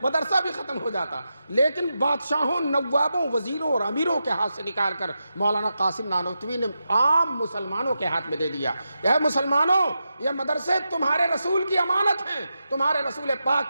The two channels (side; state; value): both; inverted; correlation -0.88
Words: مدرسہ بھی ختم ہو جاتا۔ لیکن بادشاہوں، نوابوں، وزیروں اور امیروں کے ہاتھ سے نکال کر مولانا قاسم نانوتوی نے عام مسلمانوں کے ہاتھ میں دے دیا۔ اے مسلمانوں، یہ مدرسے تمہارے رسول کی امانت ہیں، تمہارے رسول